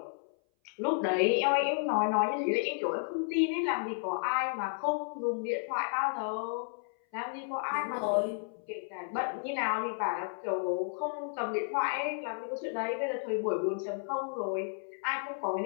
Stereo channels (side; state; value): right; silent; 56 dB below the other